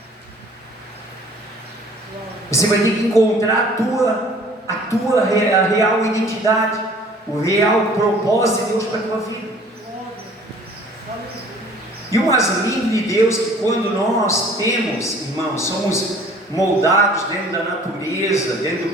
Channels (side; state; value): both; normal; correlation 0.52